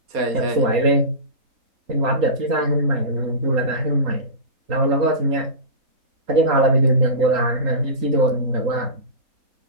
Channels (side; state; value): left; late; 3.8 ms